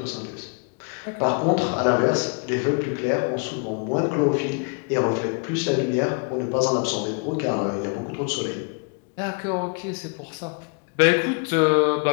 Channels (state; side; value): quieter; right; 35.6 dB